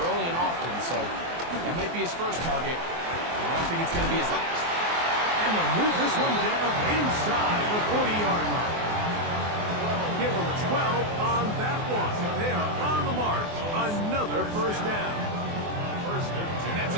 early and often. So that might be his first target. I don't think it's going to be his last. And they'll move this one down inside the 40-yard line. Give them 12 on that one. They are on the mark. Another first down. And that's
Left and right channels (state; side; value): late; left; 24 ms